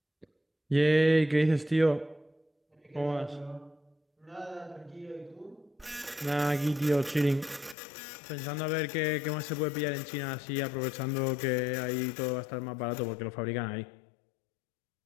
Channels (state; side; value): drops out; right; at 7.8 s